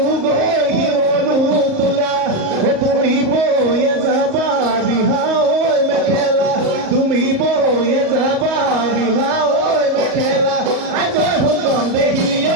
তোলা ও তুমি বয়ে যাবা বিহা ঐ মেখেলা তুমি বয়ে যাবা বিহা ঐ মেখেলা আই জয় সুন্দৰ দেহি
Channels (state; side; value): late; left; 38 ms